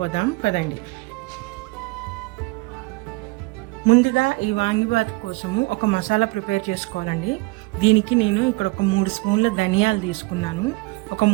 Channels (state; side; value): quieter; left; 24.9 dB